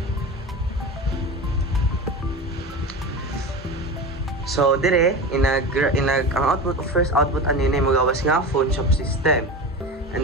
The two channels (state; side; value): normal; both; correlation 0.28